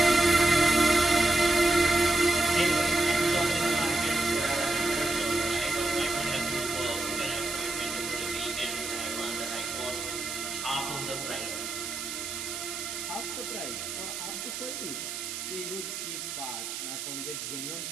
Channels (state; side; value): noise; right; hiss, 6 dB below the sound